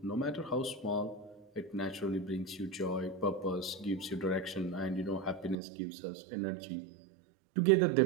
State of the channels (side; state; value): left; drops out; at 5.6 s